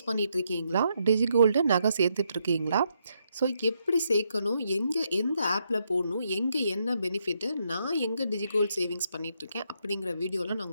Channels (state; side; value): inverted; both; correlation -0.78